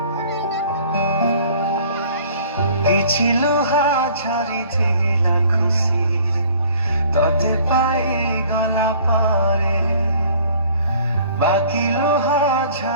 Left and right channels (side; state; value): both; inverted; correlation -0.53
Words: କିଛି ଲୁହା ଝରିଥିଲା ଖୁସିରେ ତତେ ପାଇଗଲା ପରେ, ବାକି ଲୁହା